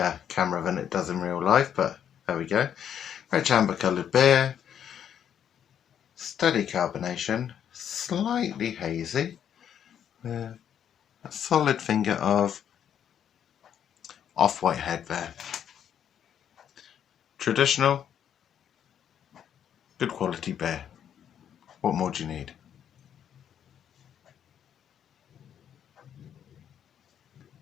camera than it does in real life, but there we go. Rich amber coloured beer. Steady carbonation. Slightly hazy. A solid finger of off-white head there. Traditional, good quality beer. What more do you need?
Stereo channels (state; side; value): quieter; right; 9.2 dB